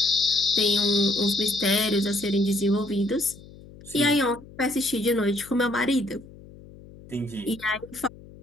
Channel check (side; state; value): left; noise; hum, 20 dB below the sound